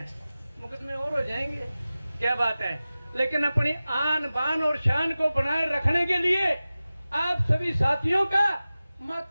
मुकदमे और हो जाएंगे, क्या बात है। लेकिन अपनी आन बान और शान को बनाए रखने के लिए आप सभी साथियों का,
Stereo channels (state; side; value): inverted; both; correlation -0.96